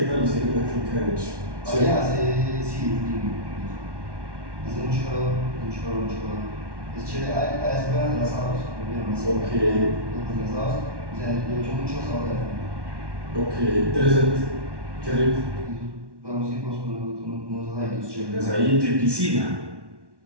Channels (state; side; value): late; left; 1.1 ms